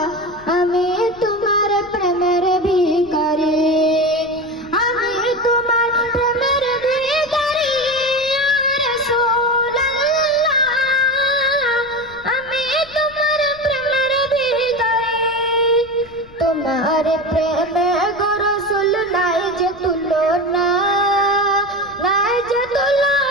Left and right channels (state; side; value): noise; left; rumble, 23 dB below the sound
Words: আমি তোমার প্রেমের ভিখারি, আমি তোমার প্রেমের ভিখারি ইয়া রাসূলুল্লাহ, আমি তোমার প্রেমের ভিখারি। তোমার প্রেমে গো রাসূল নাই যে তুলনা, নাই যে